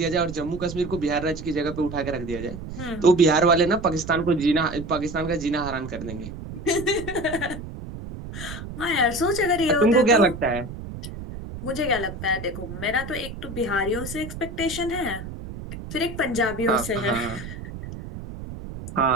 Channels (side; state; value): right; noise; rumble, 10 dB below the sound